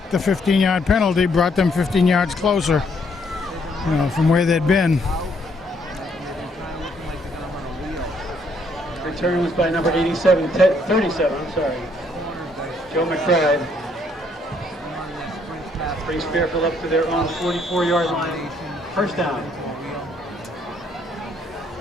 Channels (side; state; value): both; normal; correlation 0.69